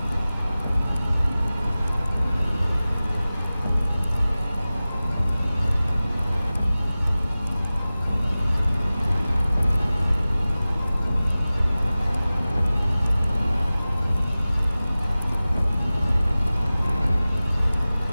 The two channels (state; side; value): inverted; both; correlation -0.97